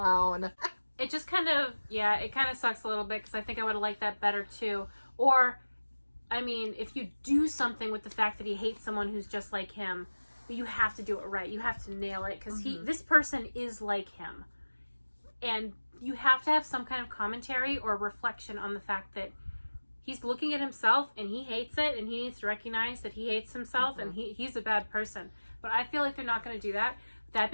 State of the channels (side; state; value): both; inverted; correlation -1.00